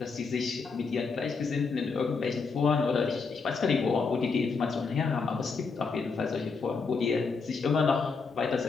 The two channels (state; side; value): quieter; right; 4.8 dB